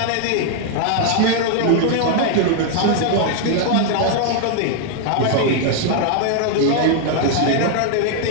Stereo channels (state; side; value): different; both; correlation 0.00